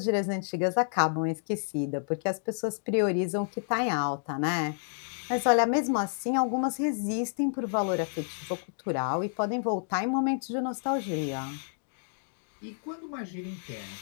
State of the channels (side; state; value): right; silent; digital silence